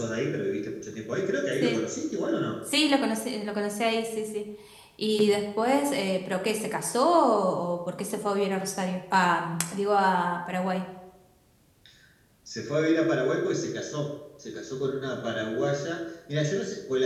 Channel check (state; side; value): identical; both; correlation 1.00